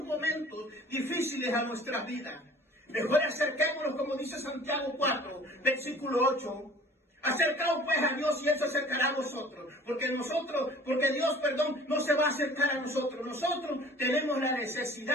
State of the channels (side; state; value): both; normal; correlation 0.48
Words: momentos difíciles a nuestras vidas. Mejor acerquémonos, como dice Santiago 4, versículo 8. Acercaos pues a Dios y Él se acercará a vosotros. Porque Dios, no se va a acercar a nosotros. Nosotros tenemos la